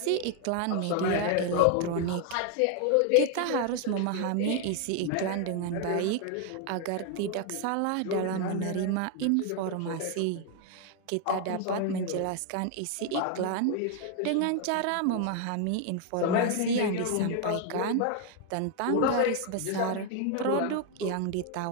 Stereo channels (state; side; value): different; both; correlation 0.00